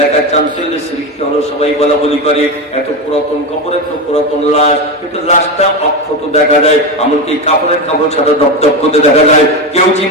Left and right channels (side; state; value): both; normal; correlation 0.16